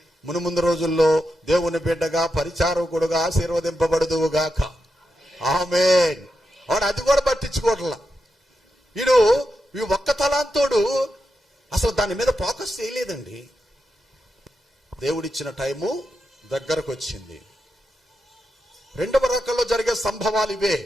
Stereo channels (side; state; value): both; normal; correlation 0.87